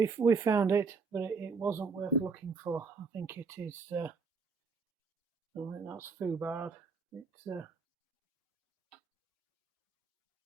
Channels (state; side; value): quieter; left; 4.9 dB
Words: found it, but it wasn't worth looking for. I think it is. I think that's foobarred. It